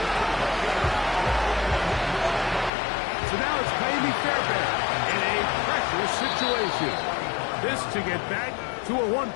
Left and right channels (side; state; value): right; drops out; at 2.7 s